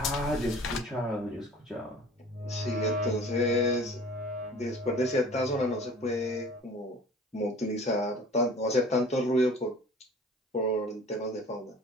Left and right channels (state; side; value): normal; both; correlation 0.45